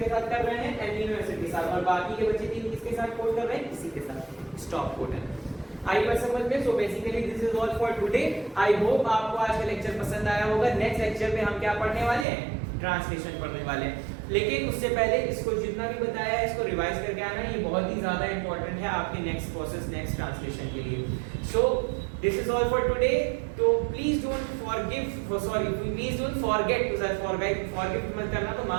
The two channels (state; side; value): drops out; left; at 12.2 s